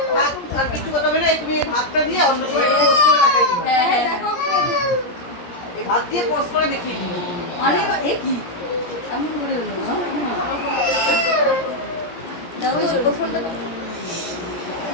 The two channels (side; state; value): right; late; 17 ms